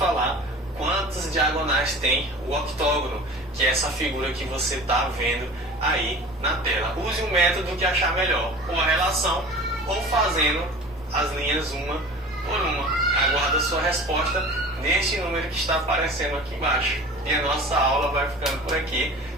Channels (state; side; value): normal; both; correlation 0.39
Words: quantas diagonais tem o octógono, que é essa figura que você está vendo aí na tela. Use um método que achar melhor, ou a relação, ou fazendo as linhas uma por uma. Aguardo a sua resposta neste número que está aparecendo aqui embaixo. E a nossa aula vai ficando por aqui.